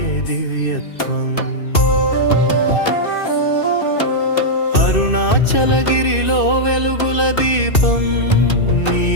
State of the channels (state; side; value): late; right; 2.6 ms